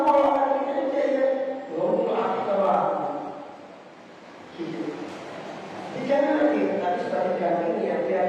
orang kita saja, belum akal gitu. Jangan lagi, tapi sebagai gantinya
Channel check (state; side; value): identical; both; correlation 1.00